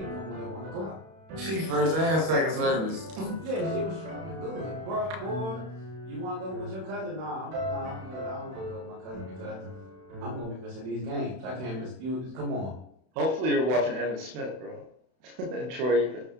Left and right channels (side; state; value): left; late; 31 ms